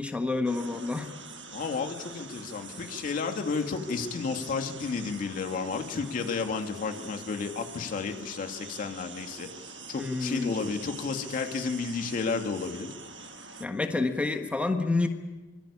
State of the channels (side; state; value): right; quieter; 3.6 dB